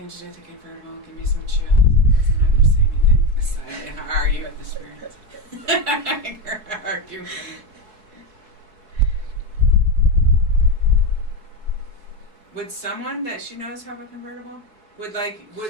to do with the convertible, give me some chills. I'm not going to say anything. Aside and argue with the spirits. Argue. Would someone that she knows have a convertible? Would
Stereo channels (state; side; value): late; left; 4.7 ms